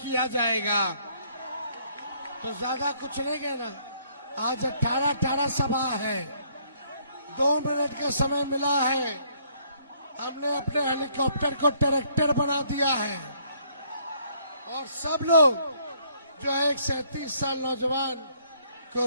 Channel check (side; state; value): both; inverted; correlation -0.65